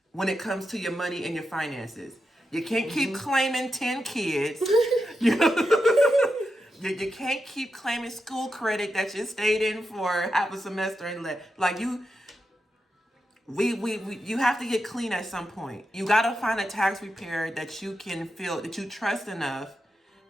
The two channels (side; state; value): both; normal; correlation 0.87